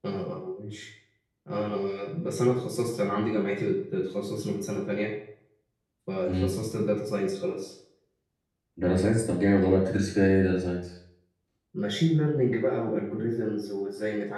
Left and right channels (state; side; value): identical; both; correlation 1.00